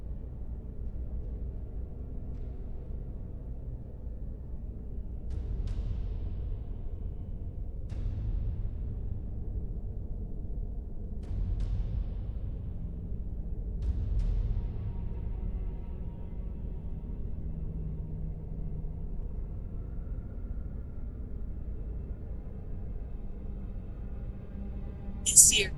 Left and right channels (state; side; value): identical; both; correlation 1.00